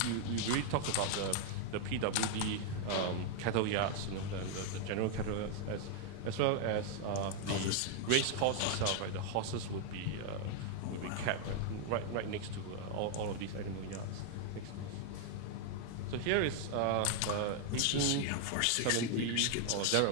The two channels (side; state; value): both; different; correlation 0.00